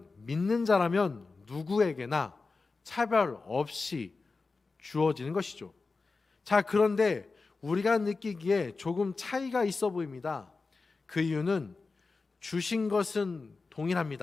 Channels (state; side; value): quieter; right; 4.0 dB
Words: 믿는 자라면 누구에게나 차별 없이 주어지는 것이죠. 자, 그런데 우리가 느끼기에 조금 차이가 있어 보입니다. 그 이유는 주신 것은